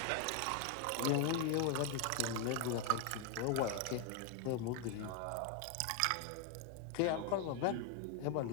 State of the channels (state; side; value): different; both; correlation 0.01